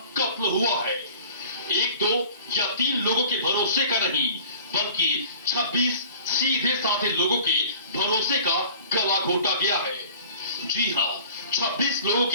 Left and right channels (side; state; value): both; inverted; correlation -0.45